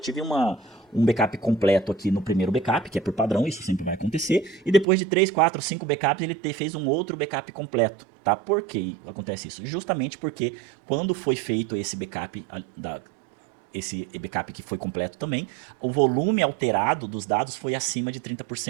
um backup completo aqui no primeiro backup, que é por padrão, isso sempre vai acontecer. E depois de 3, 4, 5 backups, ele fez um outro backup completo. Tá? Por que acontece isso? Justamente porque quando foi feito esse backup que foi completo também, o volume alterado dos dados foi acima de 30%.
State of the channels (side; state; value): left; drops out; at 4.9 s